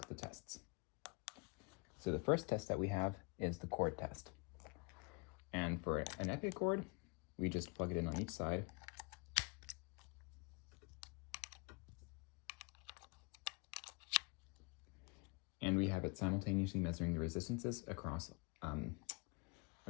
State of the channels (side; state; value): right; quieter; 31.3 dB